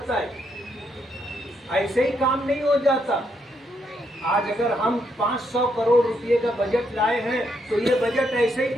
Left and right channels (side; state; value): both; normal; correlation 0.77